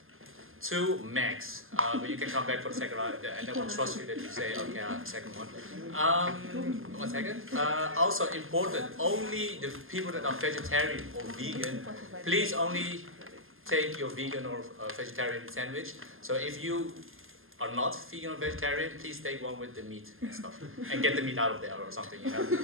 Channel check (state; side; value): late; left; 0.60 ms